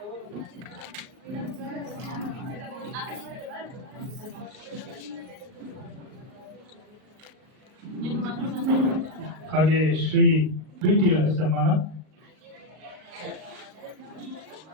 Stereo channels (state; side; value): late; left; 38 ms